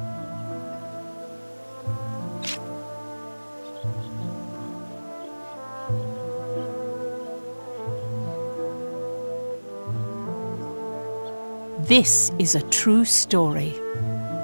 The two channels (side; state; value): both; inverted; correlation -1.00